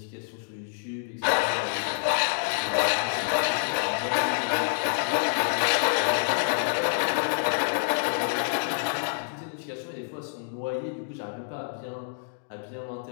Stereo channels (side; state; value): right; silent; digital silence